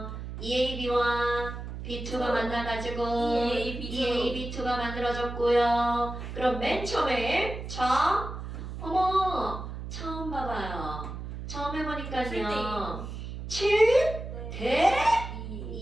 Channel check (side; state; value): right; noise; hum, 8 dB below the sound